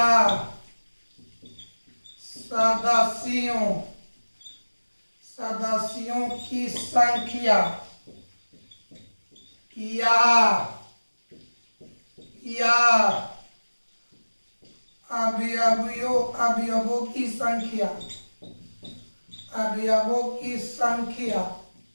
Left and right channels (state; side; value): inverted; both; correlation -1.00